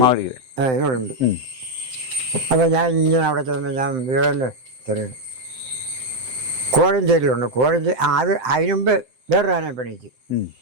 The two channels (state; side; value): late; left; 7.7 ms